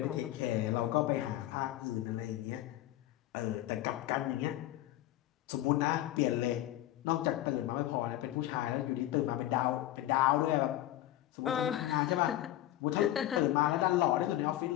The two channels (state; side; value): quieter; right; 14.3 dB